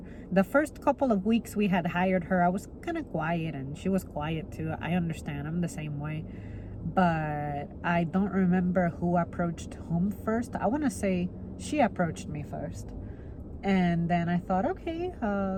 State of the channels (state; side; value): identical; both; correlation 1.00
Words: The first couple of weeks we had hired her, I was kind of quiet and she was quiet too. I understand, I'm the same way. But I don't remember who approached whom first. I want to say she approached me first. And then I thought, okay,